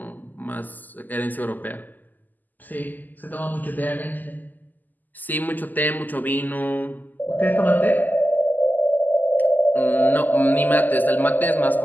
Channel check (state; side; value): late; right; 0.085 ms